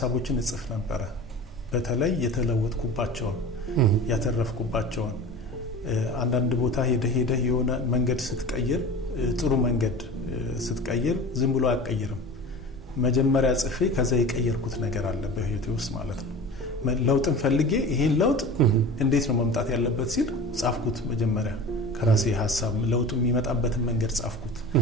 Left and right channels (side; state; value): both; normal; correlation 0.35